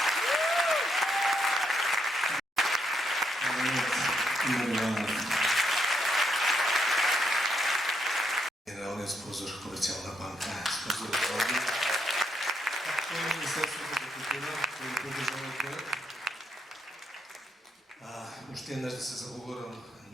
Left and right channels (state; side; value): normal; both; correlation 0.77